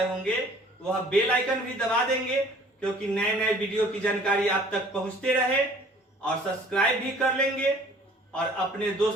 होंगे वह बेल आइकन भी दबा देंगे क्योंकि नए नए वीडियो की जानकारी आप तक पहुंचते रहे, और सब्सक्राइब भी कर लेंगे और अपने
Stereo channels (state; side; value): normal; both; correlation 0.52